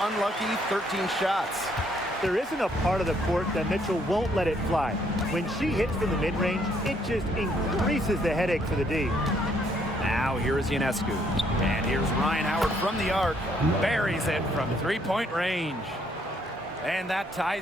13 shots. There isn't a part of the court that Mitchell won't let it fly. When she hits from the mid-range, it just increases the headache for the D. Now here's Ionescu. And here's Ryan Howard from the arc. Buries it from three-point range. And that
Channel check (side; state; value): both; normal; correlation 0.68